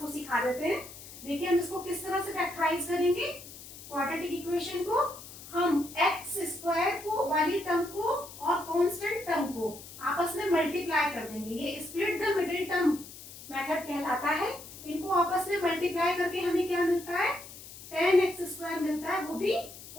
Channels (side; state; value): left; noise; hiss, 15 dB below the sound